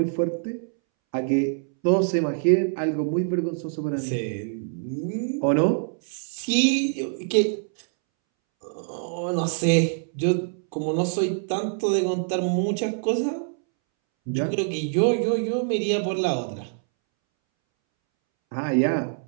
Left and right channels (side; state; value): left; silent; 62 dB below the other